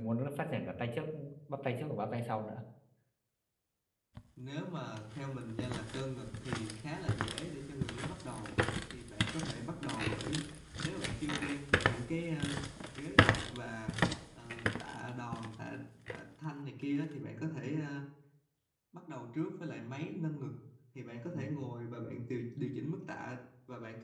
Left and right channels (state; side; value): identical; both; correlation 1.00